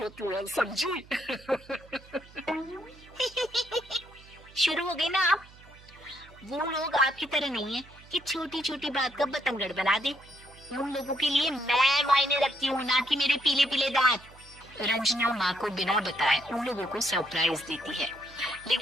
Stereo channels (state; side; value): noise; right; hum, 23 dB below the sound